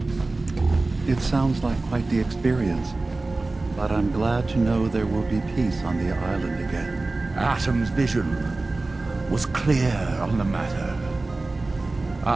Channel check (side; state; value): left; quieter; 3.3 dB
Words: It sounds like quite the experience, but I'm glad to know there will be peace on the island again. Atom's vision was clear on the matter.